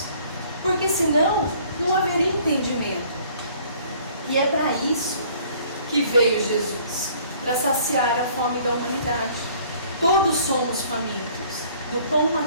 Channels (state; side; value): inverted; both; correlation -0.56